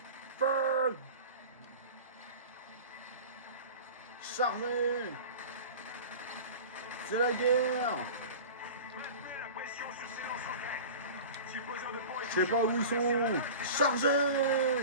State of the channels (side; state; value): both; inverted; correlation -0.36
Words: Feu! Chargez! C'est la guerre! Maintenez la pression sur ces lance-roquettes. Si le besoin de pont est Je sais pas où ils sont! Chargez!